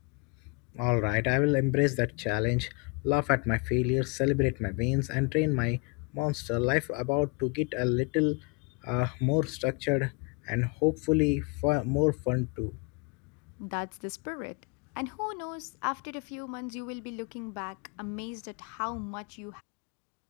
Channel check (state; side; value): quieter; right; 31.0 dB